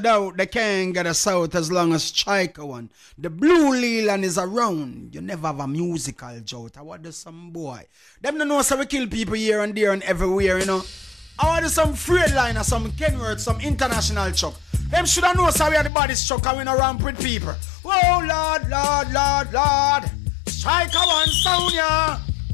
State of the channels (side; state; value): right; drops out; at 15.9 s